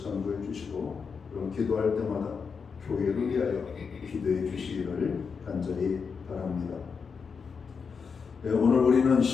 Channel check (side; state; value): right; quieter; 5.7 dB